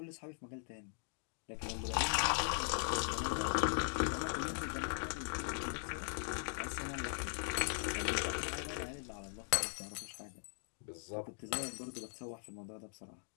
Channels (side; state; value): right; silent; digital silence